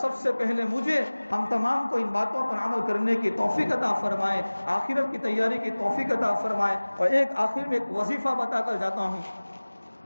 سب سے پہلے مجھے ہم تمام کو ان باتوں پر عمل کرنے کی توفیق عطا فرمائے، آخرت کی تیاری کی توفیق عطا فرمائے۔ اور ایک آخر میں ایک وظیفہ بتا کر جاتا ہوں۔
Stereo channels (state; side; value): inverted; both; correlation -1.00